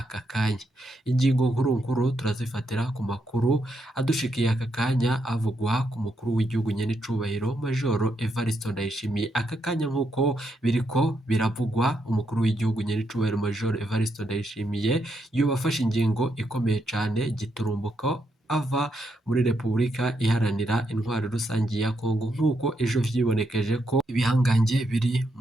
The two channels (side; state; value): both; normal; correlation 0.80